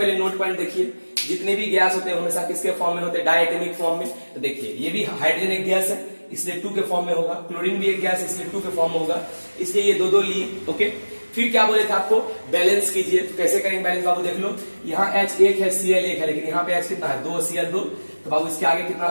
नोट पॉइंट देखिए। जितने भी गैस होते हैं हमेशा किसके फॉर्म में होते हैं, डायटोमिक फॉर्म में। तो देखिए ये भी हाइड्रोजन एक गैस है, इसलिए 2 के फॉर्म में होगा, क्लोरीन भी एक गैस है इसलिए 2 के फॉर्म में होगा, इसलिए ये 2 2 लिए, ओके। फिर क्या बोले थे आपको, बैलेंस कीजिए। तो कैसे करेंगे बैलेंस बाबू, देख लो यहाँ H 1 है, Cl 1 है, लेकिन यहाँ पे H कितना है 2, Cl 2, तो बाबू इसके आगे कितना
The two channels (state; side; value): inverted; both; correlation -1.00